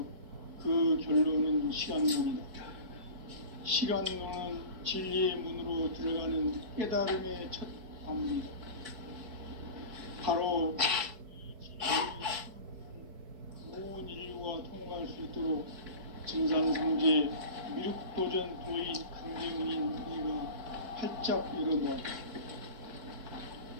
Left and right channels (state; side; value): late; left; 4.6 ms